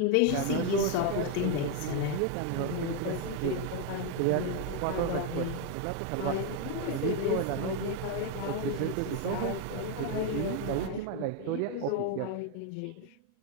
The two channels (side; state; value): both; different; correlation 0.01